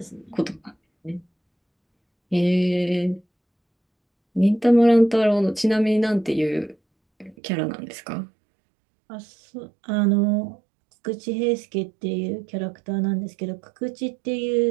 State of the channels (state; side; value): drops out; left; at 7.4 s